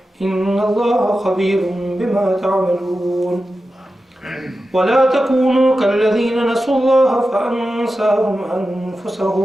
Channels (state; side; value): normal; both; correlation 0.92